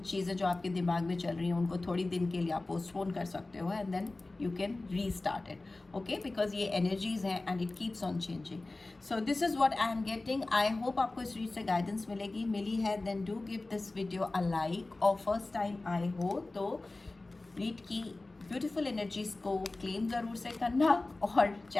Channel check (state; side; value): quieter; right; 3.1 dB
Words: चीज़ें जो आपके दिमाग में चल रही हैं उनको थोड़ी दिन के लिए आप पोस्टपोन कर सकते हो, and then you can restart it, okay, because ये एनर्जीज हैं and it keeps on changing. So this is what I am getting. I hope आपको इस रीड से गाइडेंस मिली है, then do give this video a like, और first time आए हो तो रीड की ब्यूटीफुल एनर्जीज को क्लेम ज़रूर से करना, और